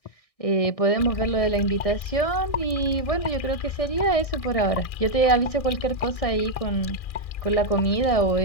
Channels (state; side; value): late; right; 1.6 ms